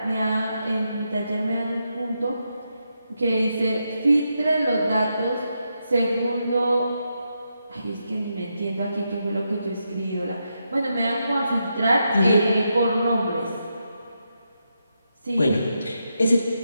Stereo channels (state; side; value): inverted; both; correlation -0.84